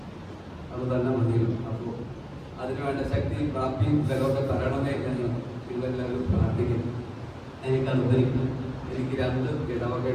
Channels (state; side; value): identical; both; correlation 1.00